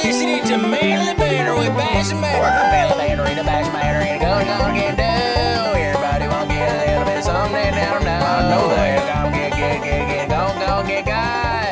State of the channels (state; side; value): identical; both; correlation 1.00